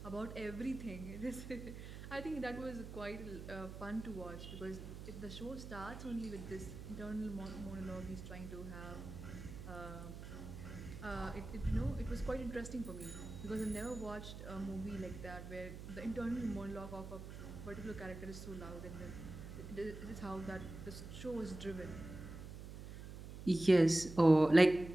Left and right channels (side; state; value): right; noise; hum, 10 dB below the sound